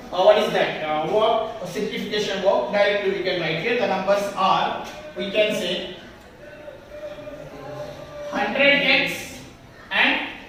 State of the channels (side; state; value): both; identical; correlation 1.00